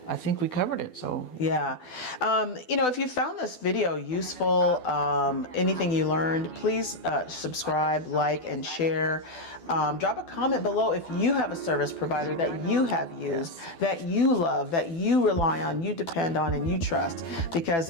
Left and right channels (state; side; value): late; right; 12 ms